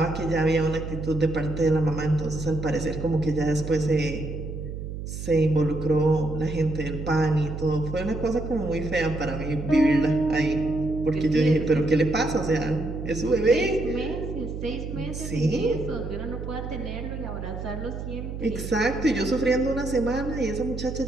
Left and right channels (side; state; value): right; noise; hum, 7 dB below the sound